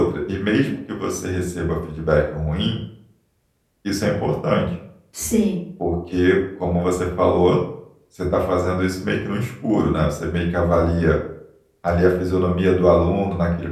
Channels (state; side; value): identical; both; correlation 1.00